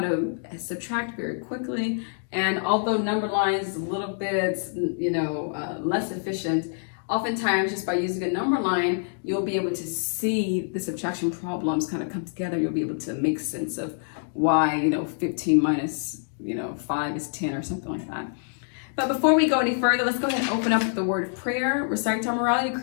subtract very quickly, and although number lines is a little bit, less efficient, oftentimes just by using a number line, you'll be able to see the subtraction problems kind of come together. You'll be able to make sense of why, 15 minus 5 is 10 or something like that. But before we go any further, let's go ahead and open up with the word of prayer, recite our morality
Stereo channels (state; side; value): silent; right; digital silence